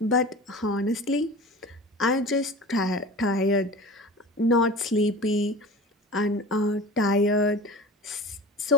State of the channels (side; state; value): both; normal; correlation 0.37